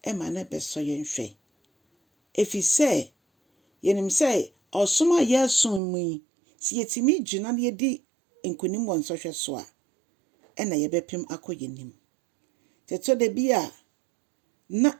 ɛma na bɛsɔ yɛn hwɛ. Efisɛ yɛnim sɛ ɔsom a yɛasom mu yi si yɛtumi gyina na yɛdi nkonim wɔ nsɔhwɛ so a ɛna yɛbɛpem akɔ yɛnim. Ɛtɔ da bi a na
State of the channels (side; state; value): left; drops out; at 5.8 s